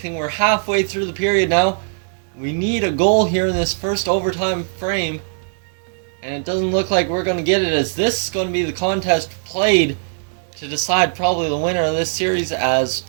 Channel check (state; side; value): silent; left; digital silence